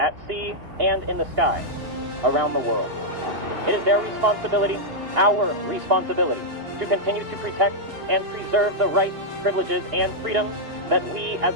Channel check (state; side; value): late; left; 2.8 ms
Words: sea, and in the sky around the world. It is their responsibility, our responsibility, to continue to protect and preserve the rights, privileges, and freedoms that we as